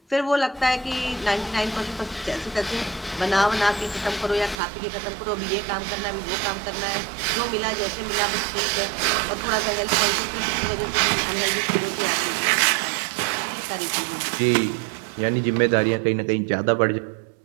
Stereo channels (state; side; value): drops out; left; at 4.5 s